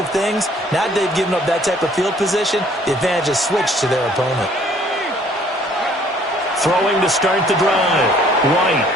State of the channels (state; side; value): normal; both; correlation 0.59